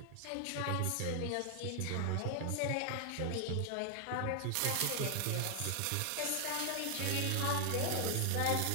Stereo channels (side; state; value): both; different; correlation 0.00